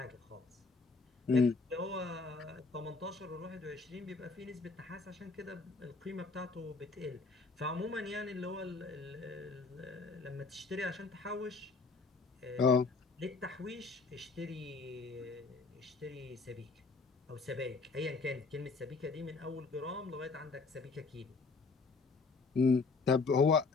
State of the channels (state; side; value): quieter; right; 4.1 dB